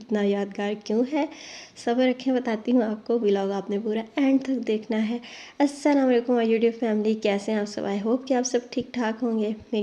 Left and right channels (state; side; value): identical; both; correlation 1.00